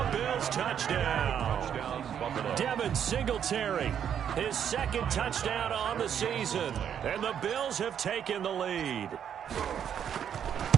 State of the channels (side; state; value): left; quieter; 8.8 dB